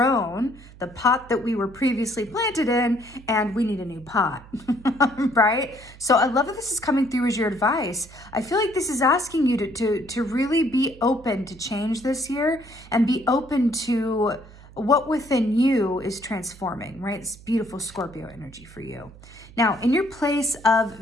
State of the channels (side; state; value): right; noise; hum, 20 dB below the sound